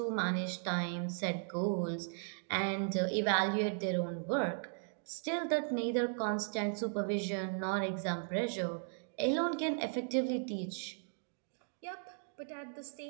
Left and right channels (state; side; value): silent; left; digital silence